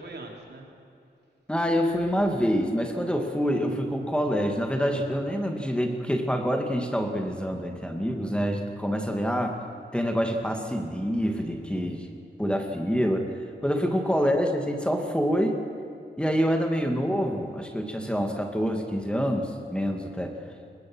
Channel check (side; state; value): both; normal; correlation 0.87